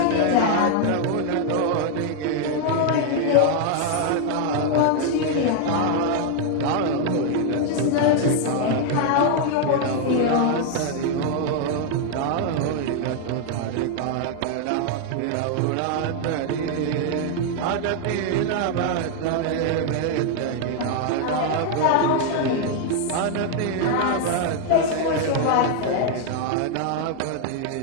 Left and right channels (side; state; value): both; different; correlation 0.00